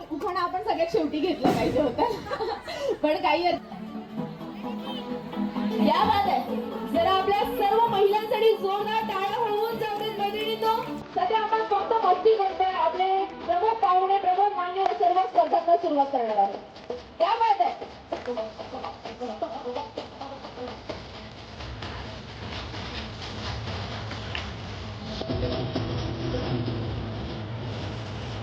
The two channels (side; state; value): both; identical; correlation 1.00